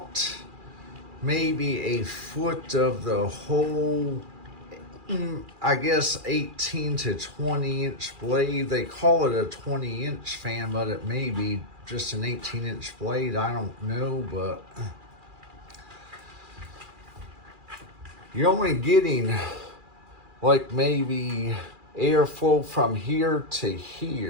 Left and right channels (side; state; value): left; late; 2.4 ms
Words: maybe a foot of the whole, I guess 18 to 20 inch blade. They call it a 20 inch fan, but it may be just an 18-inch blade. I don't know, but you're only getting like maybe airflow from here to